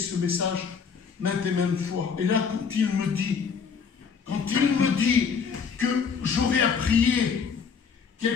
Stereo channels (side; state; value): right; quieter; 6.1 dB